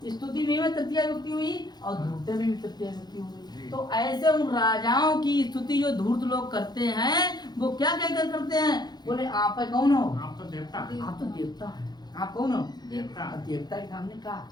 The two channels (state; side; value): late; right; 0.20 ms